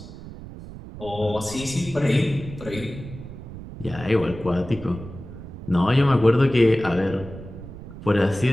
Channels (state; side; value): noise; right; rumble, 13 dB below the sound